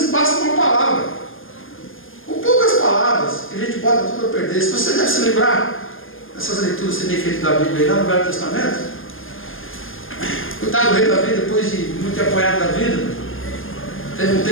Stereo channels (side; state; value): right; late; 0.59 ms